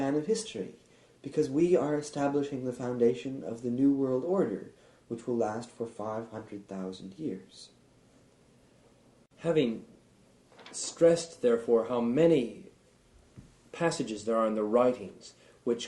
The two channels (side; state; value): both; identical; correlation 1.00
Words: of history, because we are establishing the foundation of the New World Order, which will last for 500,000 years. Having stressed, therefore, how many passages there are in the writings